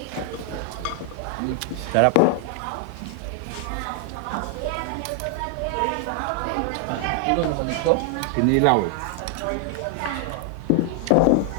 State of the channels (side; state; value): both; different; correlation 0.00